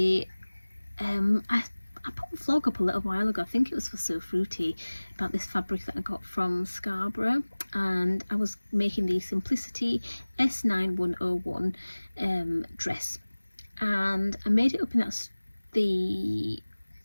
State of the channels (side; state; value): both; inverted; correlation -1.00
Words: put a vlog up a little while ago, I think it was for So Fruity, about this fabric that I got from Scarborough, and I was making the Simplicity S9101 dress, and I made it up in the